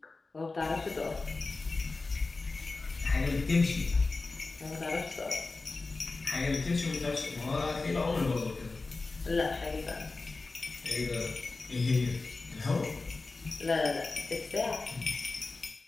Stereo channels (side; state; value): right; quieter; 3.6 dB